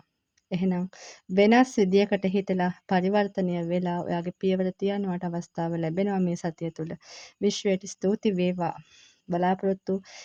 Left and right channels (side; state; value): both; identical; correlation 1.00